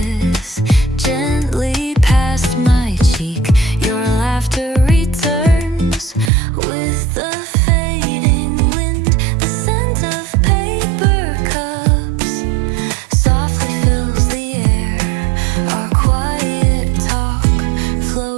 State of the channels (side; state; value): left; drops out; at 6.3 s